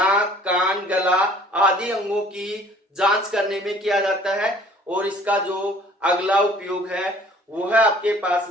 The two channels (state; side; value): normal; both; correlation 0.53